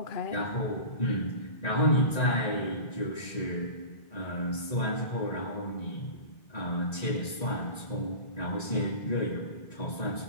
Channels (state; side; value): late; right; 1.9 ms